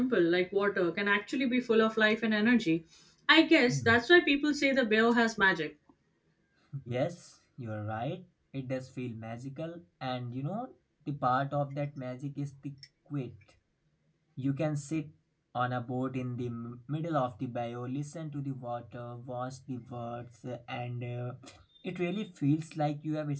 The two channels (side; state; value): both; identical; correlation 1.00